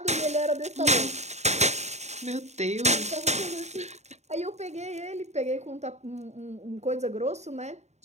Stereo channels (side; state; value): left; late; 0.32 ms